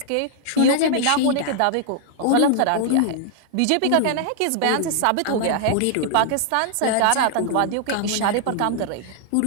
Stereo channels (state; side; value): different; both; correlation -0.01